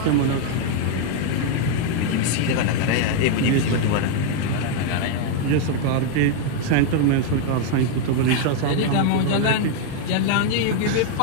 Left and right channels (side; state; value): both; different; correlation 0.00